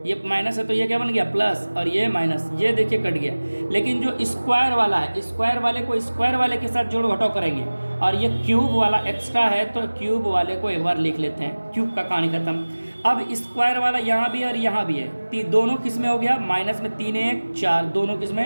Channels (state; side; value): inverted; both; correlation -1.00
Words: है तो ये क्या बन गया प्लस, और ये माइनस, ये देखिए कट गया। लेकिन जो स्क्वायर वाला है, स्क्वायर वाले को स्क्वायर वाले के साथ जोड़ घटाव करेंगे, और ये क्यूब वाला एक्स्ट्रा है तो क्यूब वाले को एक बार लिख लेते हैं, क्यूब का कहानी खत्म। अब स्क्वायर वाला यहाँ भी है और यहाँ भी है, दोनों किस में हो गया, माइनस में 3 1 4, दोनों किस